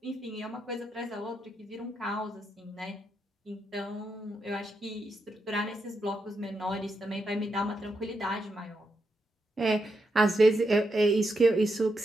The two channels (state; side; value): normal; both; correlation 0.83